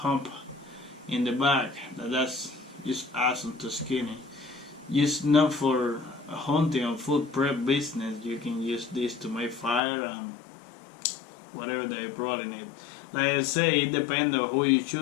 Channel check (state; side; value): drops out; right; at 9.8 s